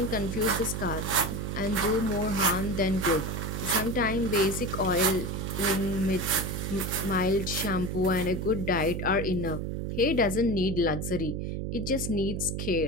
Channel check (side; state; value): right; noise; hum, 3 dB below the sound